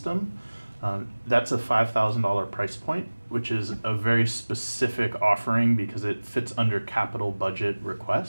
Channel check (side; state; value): both; inverted; correlation -1.00